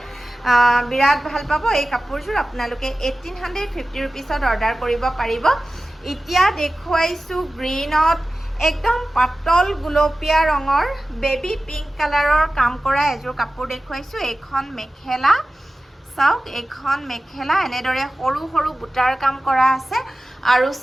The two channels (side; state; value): both; normal; correlation 0.95